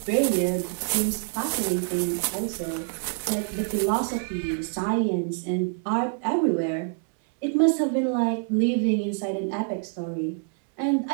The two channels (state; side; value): silent; left; 61 dB below the other